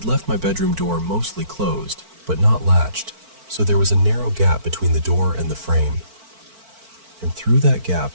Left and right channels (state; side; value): late; left; 4.5 ms